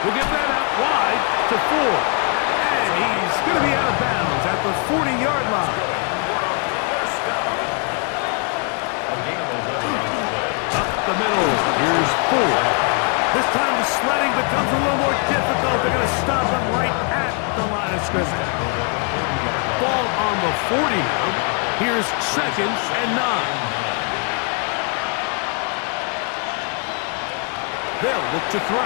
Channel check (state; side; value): quieter; right; 39.4 dB